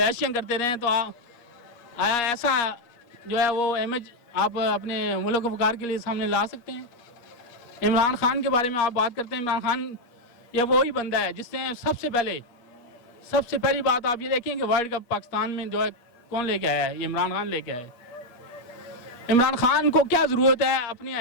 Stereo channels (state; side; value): late; right; 8.4 ms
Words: کرتے رہے ہیں, تو آیا ایسا جو ہے وہ امیج آپ اپنے ملک و وقار کے لیے سامنے لا سکتے ہیں؟ عمران خان کے بارے میں آپ بات کرتے ہیں. عمران خان یہ وہی بندہ ہے جس نے سب سے پہلی بات آپ یہ دیکھیں کہ ورلڈ کپ پاکستان میں جو ہے کون لے کے آیا ہے؟ یہ عمران خان لے کے آیا ہے. عمران خان کو کیا ضرورت ہے اپنی